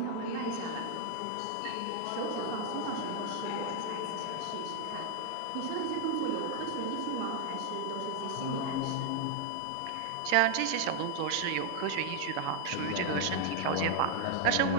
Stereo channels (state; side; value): different; both; correlation 0.01